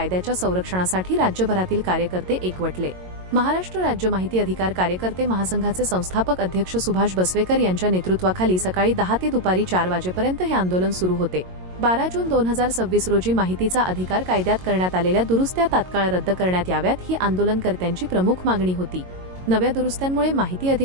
संरक्षणासाठी राज्यभरातील कार्यकर्ते एकवटले। महाराष्ट्र राज्य माहिती अधिकार कार्यकर्ते महासंघाचे संस्थापक अध्यक्ष सुभाष बसवेकर यांच्या नेतृत्वाखाली सकाळी 10 ते दुपारी 4 वाजेपर्यंत हे आंदोलन सुरू होते। 12 जून 2026 रोजी माहितीचा अधिकार कायद्यात करण्यात आलेल्या दुरुस्त्या तात्काळ रद्द करण्यात याव्यात ही आंदोलनकर्त्यांची प्रमुख मागणी होती। नव्या दुरुस्त्यांमुळे माहिती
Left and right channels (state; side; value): late; left; 22 ms